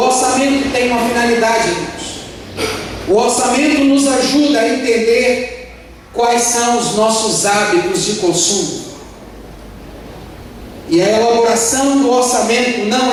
tem uma finalidade, irmãos. O orçamento nos ajuda a entender quais são os nossos hábitos de consumo. E a elaboração do orçamento não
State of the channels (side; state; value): both; identical; correlation 1.00